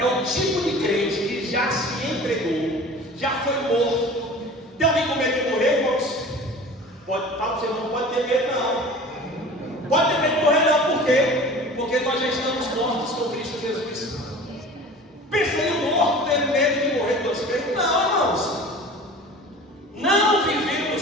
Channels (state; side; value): normal; both; correlation 0.40